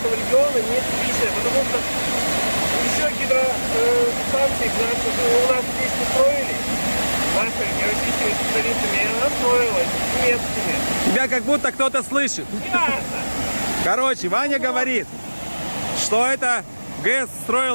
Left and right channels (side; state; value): both; inverted; correlation -1.00